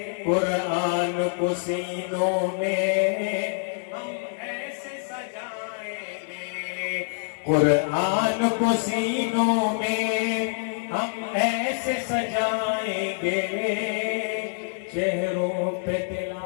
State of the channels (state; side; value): silent; right; digital silence